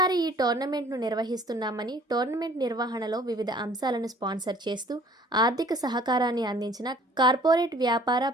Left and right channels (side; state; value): both; normal; correlation 0.54